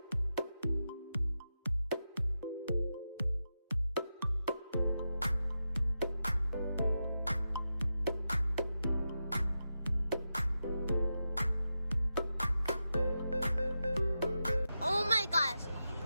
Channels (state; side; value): inverted; both; correlation -0.89